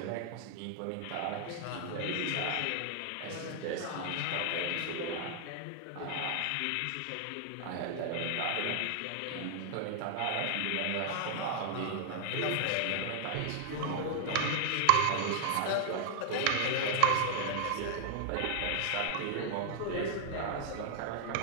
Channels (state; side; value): different; both; correlation 0.00